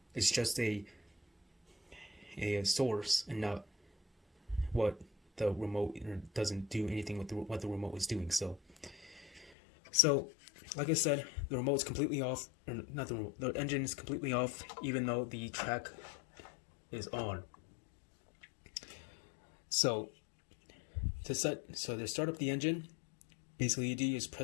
just a source and not what the remote, doesn't do anything with what the remote is doing. So like I said, the remote's completely off, or not the remote, the engine is completely off, even though the track is on. So to start up the engine, basically you do is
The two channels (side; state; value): right; drops out; at 9.6 s